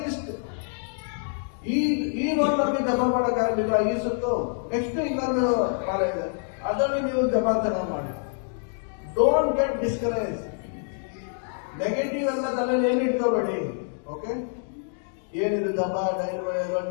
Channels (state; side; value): silent; right; digital silence